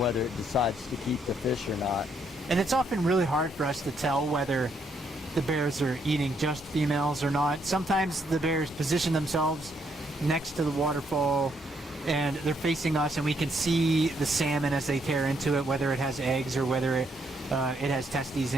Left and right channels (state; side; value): normal; both; correlation 0.73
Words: it decides to keep the fish or not. And it's often really hard for us to tell whether the bears are eating just females or not. Sometimes the bears position themselves next to the waterfall and they're facing us, and we can see the salmon as they tear into it, whether it has eggs or whether it has testes